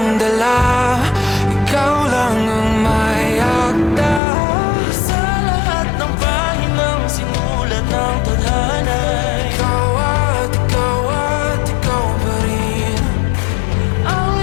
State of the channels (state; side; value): drops out; right; at 4.2 s